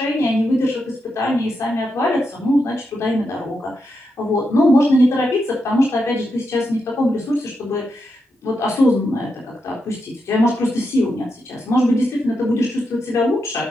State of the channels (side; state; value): both; normal; correlation 0.85